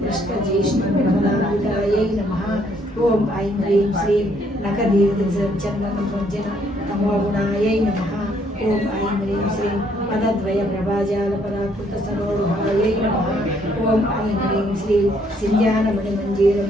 జ్యేష్ఠ బృహదాన్వితాయై నమః. ఓం ఐం హ్రీం శ్రీం నఖదీర్ఘచందన భంజన తమోగుణాయై నమః. ఓం ఐం హ్రీం శ్రీం పదద్వయ ప్రభాజాల పరాకృత సరోహాయై నమః. ఓం ఐం హ్రీం శ్రీం సింజానమణి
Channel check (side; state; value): both; normal; correlation 0.68